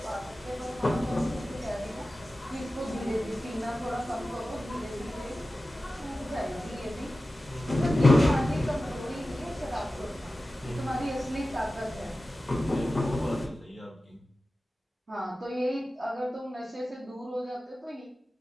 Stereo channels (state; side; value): normal; both; correlation 0.95